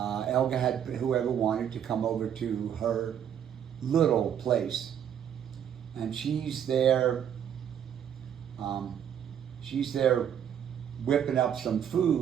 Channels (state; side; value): quieter; left; 9.1 dB